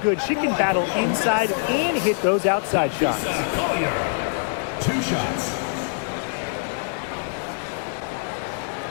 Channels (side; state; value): right; silent; digital silence